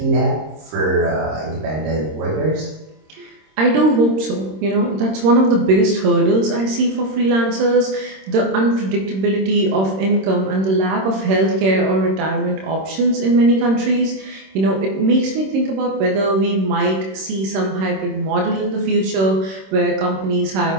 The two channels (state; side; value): late; left; 26 ms